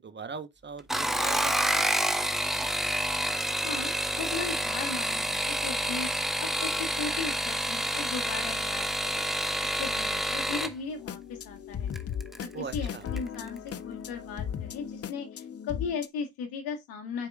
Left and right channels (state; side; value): normal; both; correlation 0.70